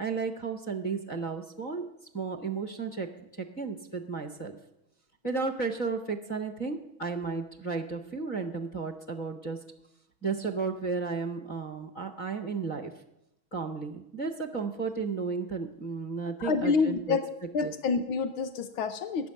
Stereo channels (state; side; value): late; right; 6.2 ms